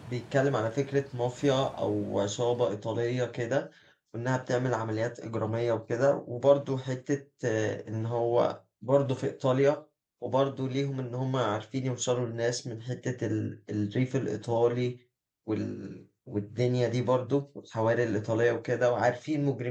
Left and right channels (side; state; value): both; identical; correlation 1.00